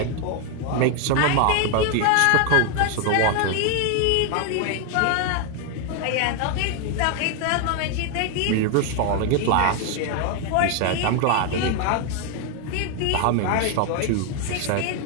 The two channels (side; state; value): both; different; correlation 0.01